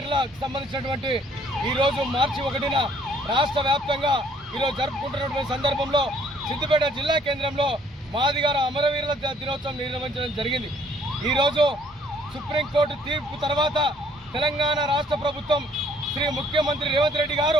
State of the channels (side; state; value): both; normal; correlation 0.62